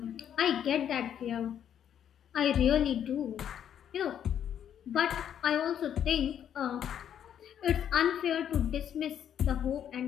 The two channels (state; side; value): quieter; right; 9.4 dB